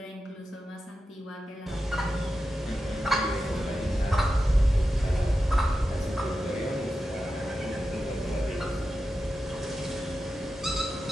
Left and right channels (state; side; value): normal; both; correlation 0.91